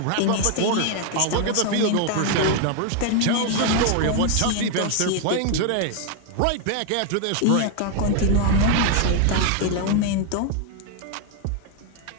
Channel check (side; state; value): both; different; correlation 0.00